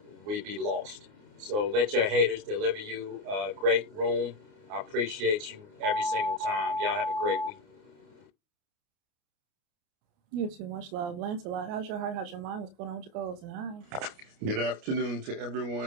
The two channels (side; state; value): left; late; 29 ms